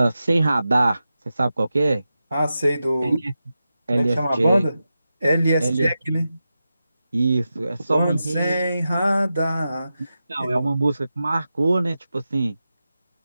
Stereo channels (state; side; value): inverted; both; correlation -0.91